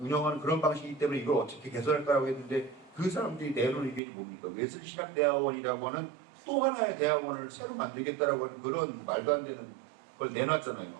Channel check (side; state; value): left; drops out; at 4.0 s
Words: 그런 방식이기 때문에 이걸 어떻게 개선할까라고 했는데 그 사람들이 내놓은 의견이 뭡니까? 웨슬리 신학대학원이라고 하는 또 하나의 대학원을 새로 만들겠다라고 하는 그런 말도 안 되는 걸 내놨잖아요.